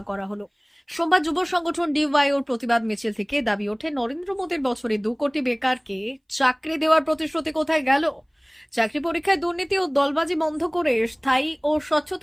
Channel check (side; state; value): both; identical; correlation 1.00